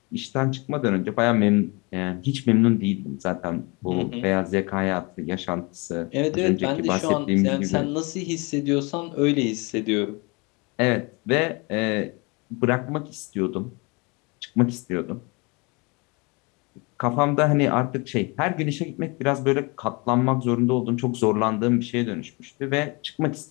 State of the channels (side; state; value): right; quieter; 28.2 dB